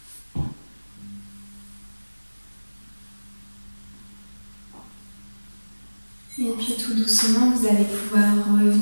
doucement, vous allez pouvoir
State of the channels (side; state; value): both; inverted; correlation -1.00